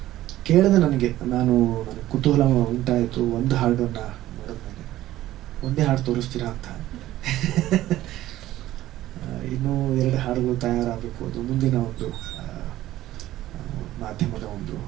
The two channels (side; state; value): left; quieter; 14.7 dB